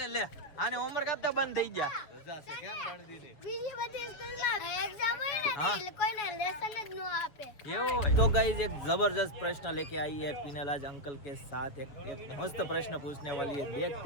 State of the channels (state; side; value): late; right; 6.9 ms